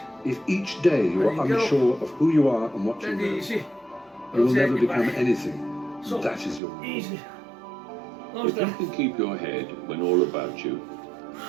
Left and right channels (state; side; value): drops out; left; at 6.6 s